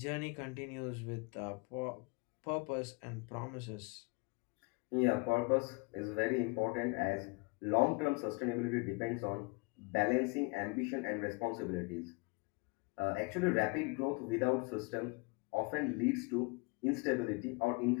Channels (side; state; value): right; quieter; 29.8 dB